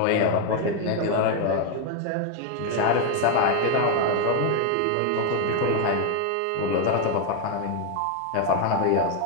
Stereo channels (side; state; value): both; different; correlation 0.01